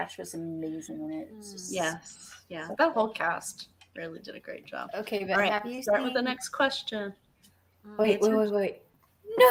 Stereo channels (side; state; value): both; identical; correlation 1.00